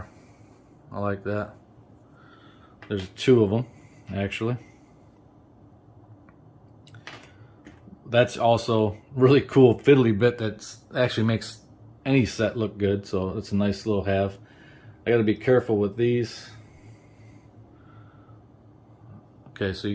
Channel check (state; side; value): identical; both; correlation 1.00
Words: I like that. There's 2 of them actually. That's also really cool fiddly bit that actually makes any set look good, so it's a nice little have. I got to be careful with these. Okay, so